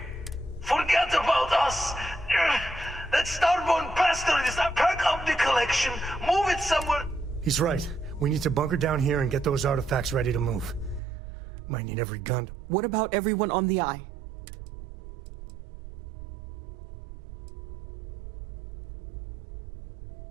He's right. We need to bunker down here and get those artifacts ready to move. Might need every gun. What about everyone on the Eye?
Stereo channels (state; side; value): drops out; left; at 11.0 s